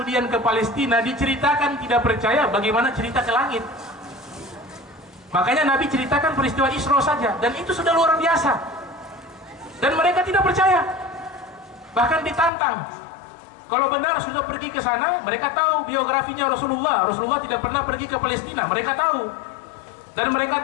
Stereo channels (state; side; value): drops out; right; at 12.5 s